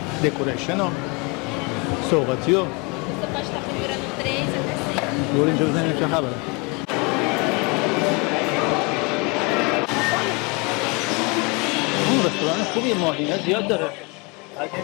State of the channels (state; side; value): quieter; right; 29.5 dB